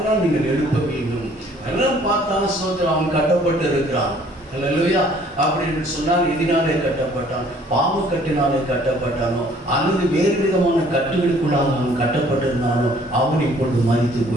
நீங்கள் எழுப்ப வேண்டும். எல்லாம் பார்த்தா ஸ்தோத்திரம் அவன் கட்டப்பட்டு இருக்கிறான். அல்லேலூயா. அப்படின்னு சொன்னால் எதினாலே கட்டப்பட்டான்? பாவ கட்டினாலே கட்டப்பட்டானோ அல்லது வேறு விதமான கட்டுகளுக்குள்ளாக அவன் கட்டப்பட்டிருந்தானோ அவன் இப்பொழுது மரித்து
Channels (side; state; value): both; normal; correlation 0.58